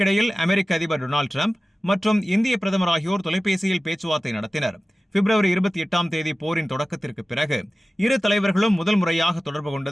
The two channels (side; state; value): both; normal; correlation 0.96